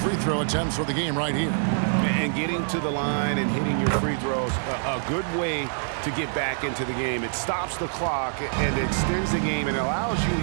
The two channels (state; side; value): silent; left; 61 dB below the other